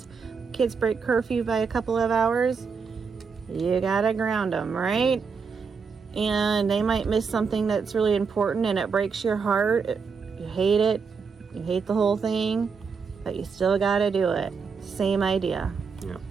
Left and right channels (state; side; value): quieter; left; 5.5 dB